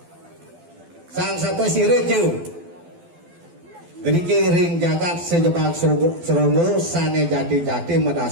sang sapa sireju diki ring jagat sejebak srogo sane jati-jati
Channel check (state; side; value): late; left; 12 ms